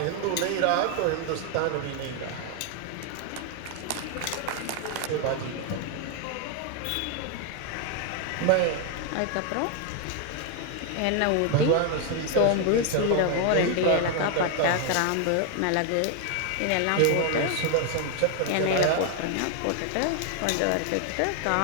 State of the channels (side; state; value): both; different; correlation 0.00